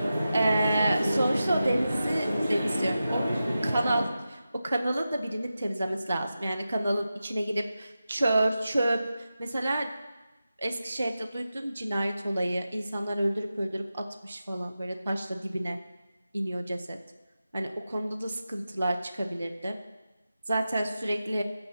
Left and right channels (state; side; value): inverted; both; correlation -0.92